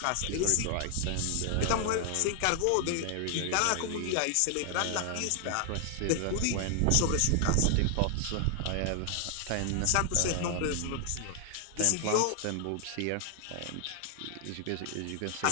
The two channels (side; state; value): both; different; correlation 0.00